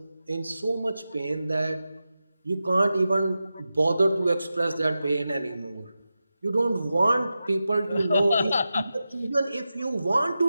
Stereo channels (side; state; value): both; inverted; correlation -0.92